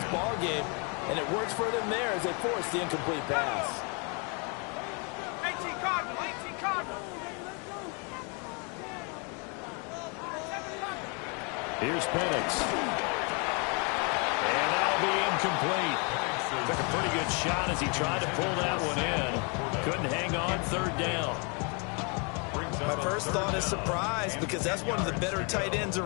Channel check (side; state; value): right; quieter; 34.7 dB